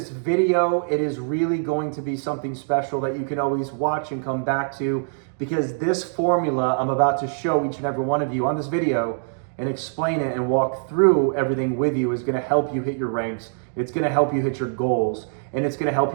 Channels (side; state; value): left; silent; 63 dB below the other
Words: video. It is really going to be something special that you can always watch and come back to, because this formula I'm about to show each and every one of you on this video and explain it and walk through everything with you is going to help you hit your ranks. It's going to help you hit your goals, and it's going to help